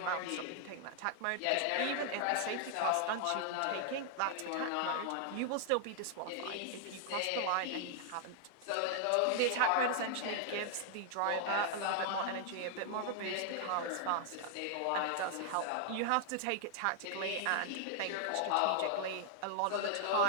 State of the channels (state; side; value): different; both; correlation 0.00